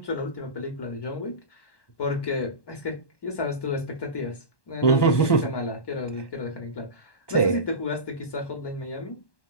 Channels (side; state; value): right; late; 1.1 ms